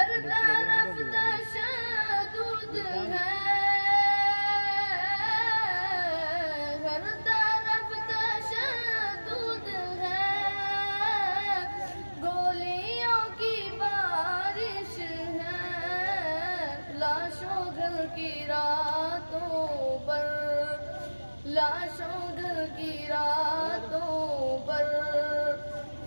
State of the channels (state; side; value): inverted; both; correlation -1.00